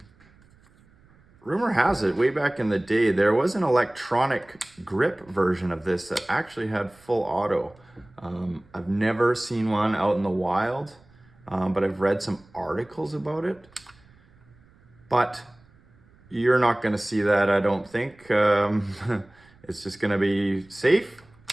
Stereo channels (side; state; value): right; noise; rumble, 29 dB below the sound